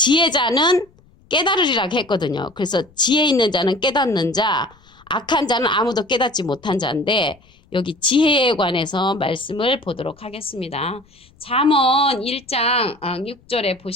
깨달으리라고 했거든요. 그래서 지혜 있는 자는 깨닫는 자, 악한 자는 아무도 깨닫지 못한 자인데 여기 지혜에 관해서 말씀을 보도록 하겠습니다. 잠언 1장 6절에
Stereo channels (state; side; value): noise; left; rumble, 30 dB below the sound